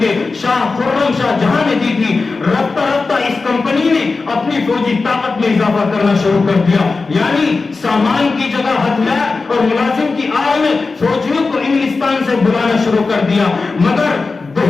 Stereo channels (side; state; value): right; quieter; 4.0 dB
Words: شاہ خرم شاہ جہاں نے دی تھی۔ رفتہ رفتہ اس کمپنی نے اپنی فوجی طاقت میں اضافہ کرنا شروع کر دیا، یعنی سامان کی جگہ ہتھیار اور ملازم کی آڑ میں فوجیوں کو انگلستان سے بلانا شروع کر دیا۔ مگر